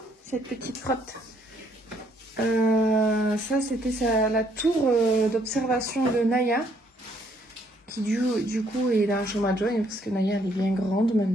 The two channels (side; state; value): both; normal; correlation 0.68